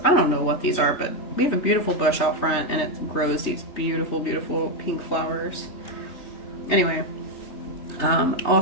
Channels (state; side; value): late; right; 3.2 ms